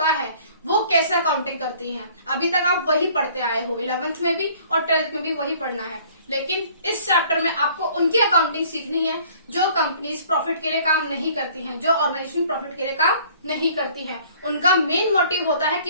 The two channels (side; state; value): both; inverted; correlation -0.55